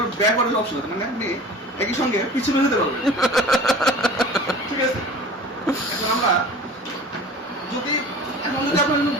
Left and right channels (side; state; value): both; normal; correlation 0.40